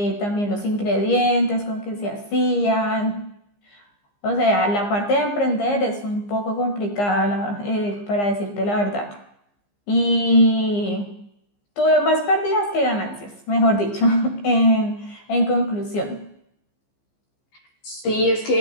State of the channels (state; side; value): late; right; 15 ms